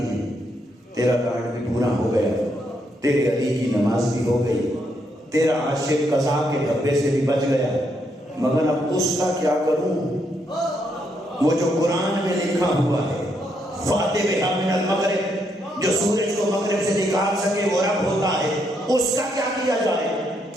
ہیں، تیرا کارڈ بھی پورا ہو گیا، تیرے علی کی نماز بھی ہو گئی، تیرا عاشق قضا کے دھبے سے بھی بچ گیا، مگر اب اس کا کیا کروں؟ وہ جو قرآن میں لکھا ہوا ہے فاتح بہا من المغرب، جو سورج کو مغرب سے نکال سکے وہ رب ہوتا ہے، اس کا کیا کیا جائے؟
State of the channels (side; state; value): both; normal; correlation 0.76